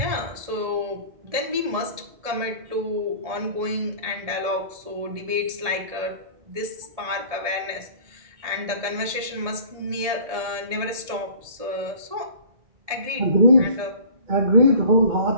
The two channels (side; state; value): left; late; 1.7 ms